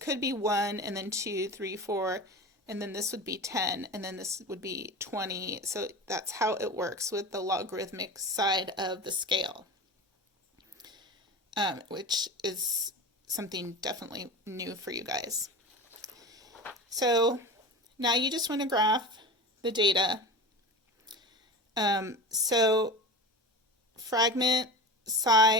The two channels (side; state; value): both; normal; correlation 0.29